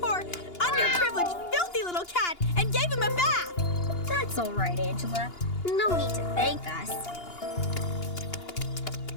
underprivileged, filthy little cat and gave him a bath. That's all right, Angela. No need to thank us.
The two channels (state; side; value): late; right; 2.8 ms